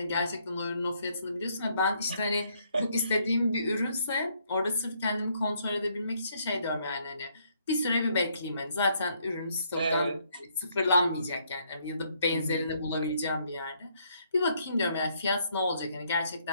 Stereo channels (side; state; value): both; inverted; correlation -0.70